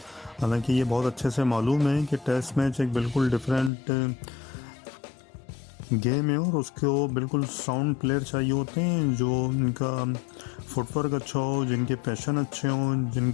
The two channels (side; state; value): right; drops out; at 3.7 s